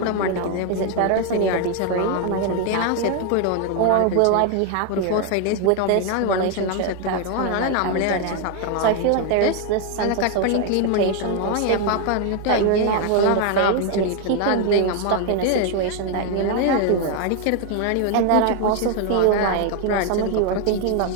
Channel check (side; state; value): both; different; correlation 0.01